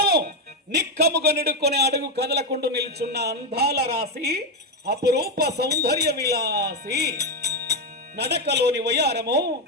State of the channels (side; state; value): both; normal; correlation 0.07